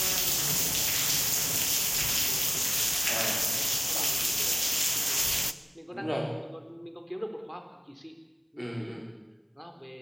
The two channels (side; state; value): both; identical; correlation 1.00